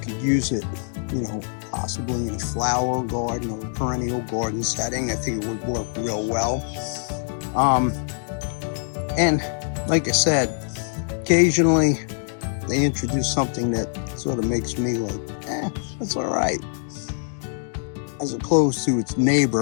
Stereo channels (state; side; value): silent; right; digital silence